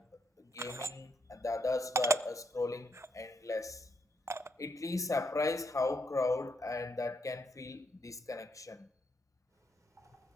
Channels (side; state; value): both; normal; correlation 0.77